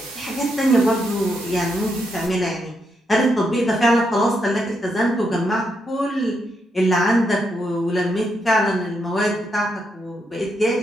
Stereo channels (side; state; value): both; normal; correlation 0.80